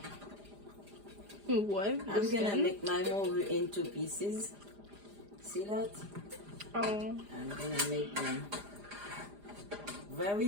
What? I'm gonna make my mogu into pieces. See that? Oh. I'm gonna make them very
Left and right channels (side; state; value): left; late; 4.9 ms